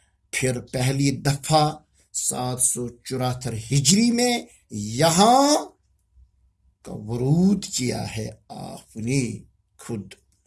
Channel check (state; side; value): identical; both; correlation 1.00